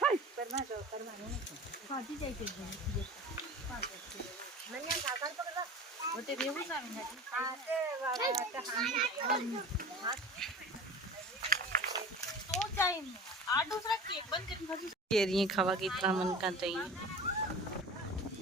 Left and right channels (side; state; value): both; normal; correlation 0.37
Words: केरियां खावा की इतना मन का चाहिए